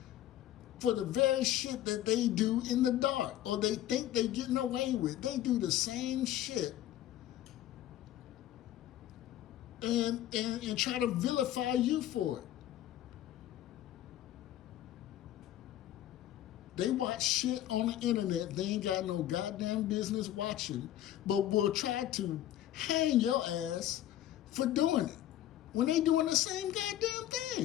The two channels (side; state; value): right; quieter; 12.8 dB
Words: for the very shit that they do in the dark or they think they're getting away with. They do the same shit and try to vilify you for it. They watch shit on the internet they ain't got no goddamn business watching, but will try to hang your ass for doing it when they doing the same goddamn